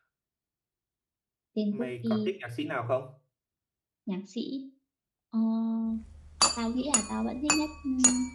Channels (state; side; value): identical; both; correlation 1.00